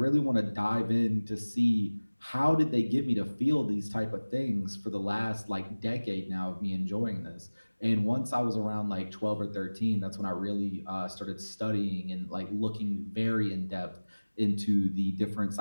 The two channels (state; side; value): inverted; both; correlation -1.00